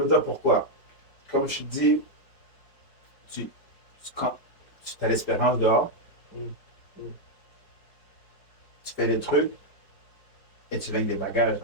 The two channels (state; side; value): late; right; 5.0 ms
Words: te dire pourquoi. Comme je te dis, quand tu as l'espérance dehors, tu fais des trucs et tu viens avec des bagages